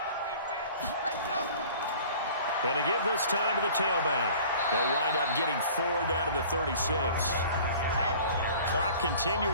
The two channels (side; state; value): both; inverted; correlation -0.46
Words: And to give this time to the tailback. They'll wind up getting 4 down to the 36. Clock